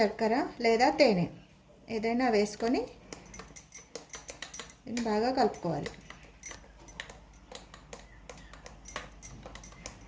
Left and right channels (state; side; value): identical; both; correlation 1.00